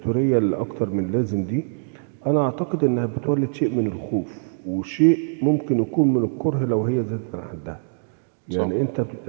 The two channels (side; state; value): left; silent; digital silence